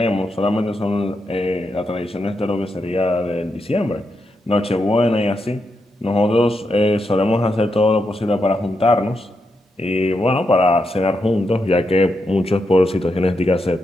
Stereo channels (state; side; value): normal; both; correlation 0.84